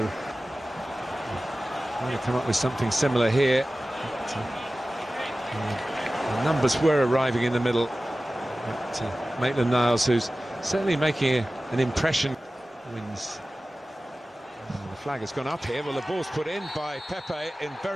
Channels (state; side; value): normal; both; correlation 0.96